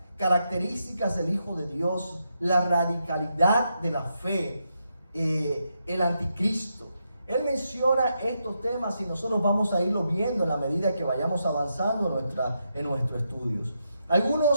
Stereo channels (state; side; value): inverted; both; correlation -0.83